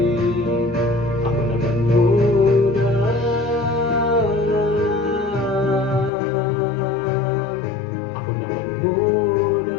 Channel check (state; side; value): drops out; right; at 6.1 s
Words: ako naman muna. Ako naman